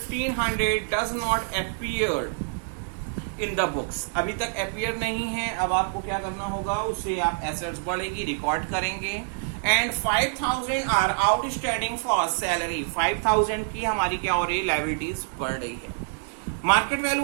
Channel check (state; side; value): silent; left; 57 dB below the other